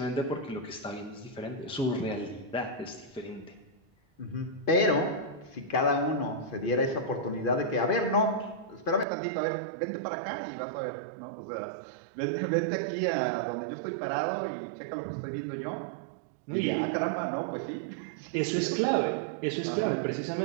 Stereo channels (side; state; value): left; drops out; at 9.1 s